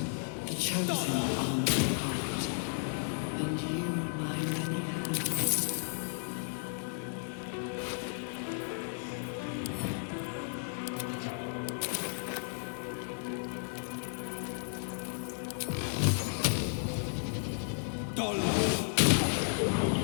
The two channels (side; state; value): right; silent; digital silence